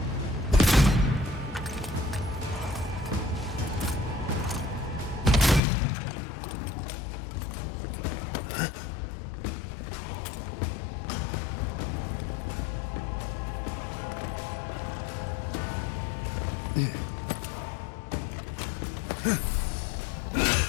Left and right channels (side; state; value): right; drops out; at 5.6 s